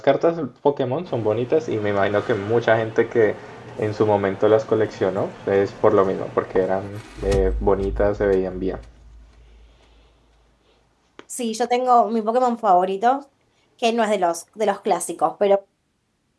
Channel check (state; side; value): identical; both; correlation 1.00